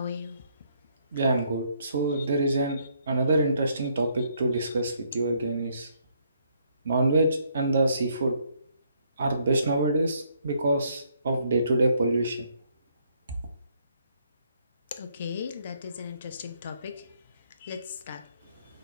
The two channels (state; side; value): inverted; both; correlation -0.70